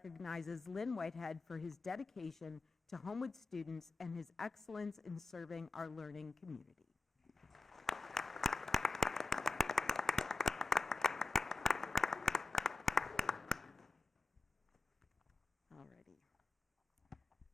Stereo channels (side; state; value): right; quieter; 3.4 dB